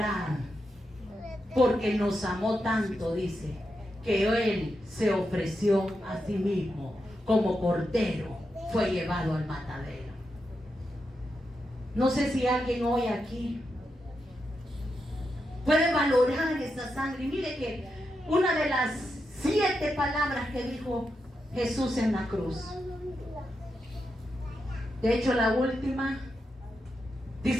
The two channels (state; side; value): normal; both; correlation 0.86